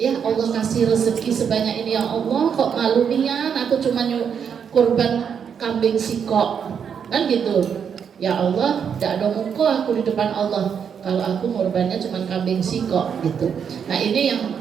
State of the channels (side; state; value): left; quieter; 7.4 dB